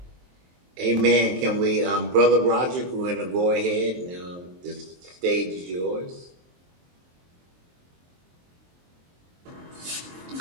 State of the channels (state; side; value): late; left; 23 ms